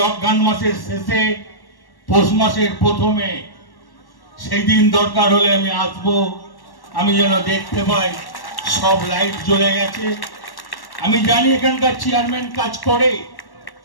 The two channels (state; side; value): late; right; 1.1 ms